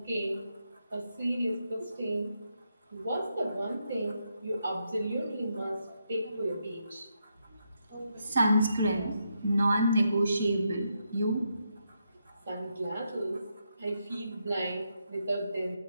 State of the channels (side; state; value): both; inverted; correlation -0.81